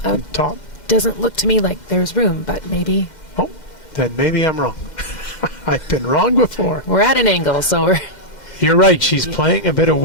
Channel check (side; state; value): right; late; 2.1 ms